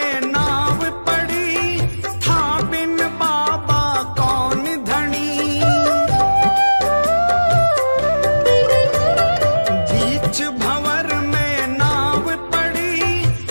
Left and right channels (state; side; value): inverted; both; correlation -1.00